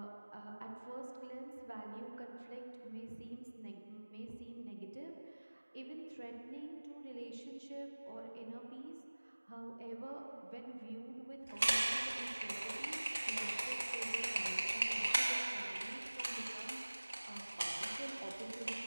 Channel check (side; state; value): both; inverted; correlation -1.00